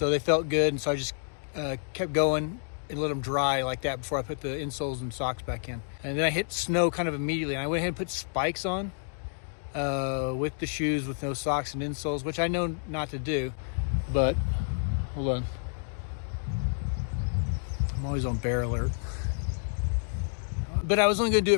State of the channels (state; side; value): silent; right; digital silence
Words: they felt good, and so I just kept going and let them dry like that before I put the insoles and socks back in. And then I hit snow kind of immediately. And I went ahead and put spikes on with the shoes with no socks and insoles, which I know not to do. But, hold on. I'm always on bear alert. But I was only going to do